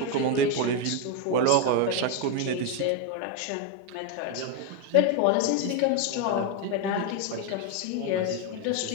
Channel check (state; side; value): different; both; correlation 0.02